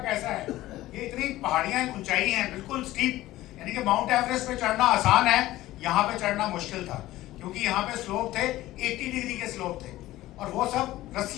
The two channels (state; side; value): quieter; right; 16.2 dB